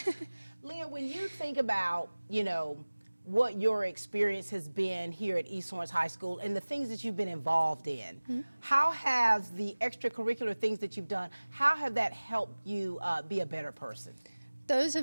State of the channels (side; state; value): both; inverted; correlation -1.00